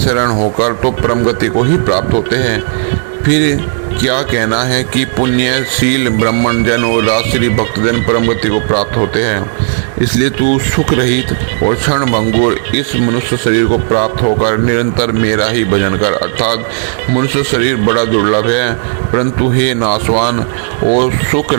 होकर तो परम गति को ही प्राप्त होते हैं। फिर क्या कहना है कि पुण्यशील ब्राह्मण जन और राजश्री भक्तजन परम गति को प्राप्त होते हैं। इसलिए तू सुख रहित और क्षण भंगुर इस मनुष्य शरीर को प्राप्त होकर निरंतर मेरा ही भजन कर। अर्थात मनुष्य शरीर बड़ा दुर्लभ है, परंतु हे नाशवान और सुख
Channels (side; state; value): left; silent; digital silence